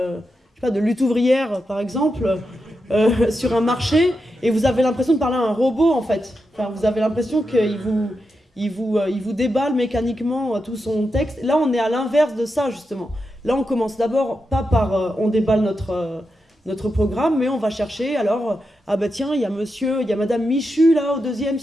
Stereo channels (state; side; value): normal; both; correlation 0.87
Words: lutte ouvrière, par exemple, sur un marché, et vous avez l'impression de parler à un robot, en fait. Enfin, vous avez l'impression qu'il vous déballe mécaniquement tout son texte. Là, on est à l'inverse de ça, justement. Là, on commence d'abord, pas par on déballe notre programme, mais on va chercher, alors, ah bah tiens, il y a madame Michu, là, au deuxième,